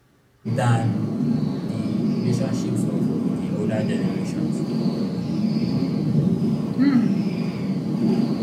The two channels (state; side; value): identical; both; correlation 1.00